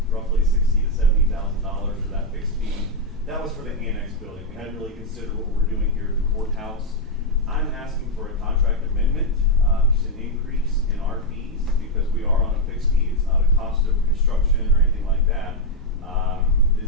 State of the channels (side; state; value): both; normal; correlation 0.01